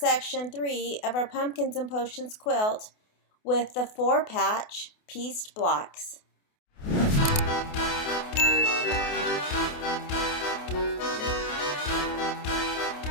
3 of our Pumpkins and Potions quilt with the 4-patch pieced blocks.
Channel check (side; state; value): right; late; 28 ms